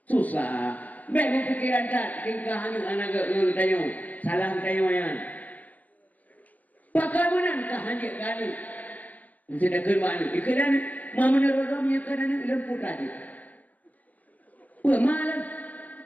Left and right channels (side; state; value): right; late; 0.079 ms